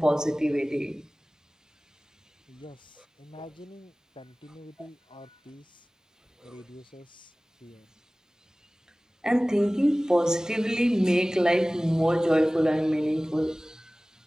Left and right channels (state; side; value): normal; both; correlation 0.98